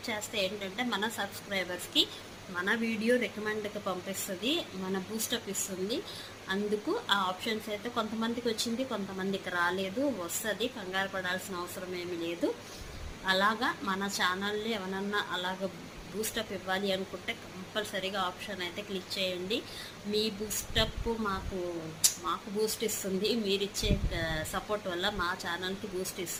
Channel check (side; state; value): both; identical; correlation 1.00